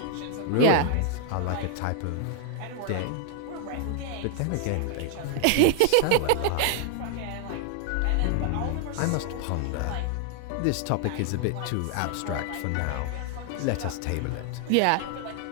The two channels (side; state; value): both; different; correlation 0.00